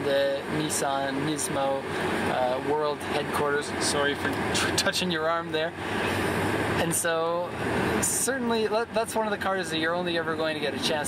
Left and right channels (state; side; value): identical; both; correlation 1.00